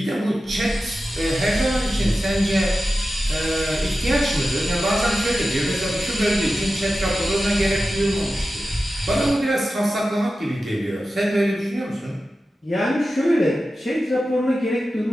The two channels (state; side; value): normal; both; correlation 0.93